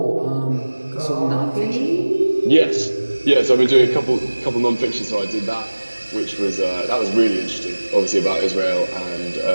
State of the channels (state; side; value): inverted; both; correlation -1.00